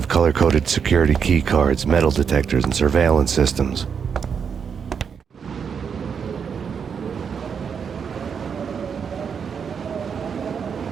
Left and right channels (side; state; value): left; quieter; 6.8 dB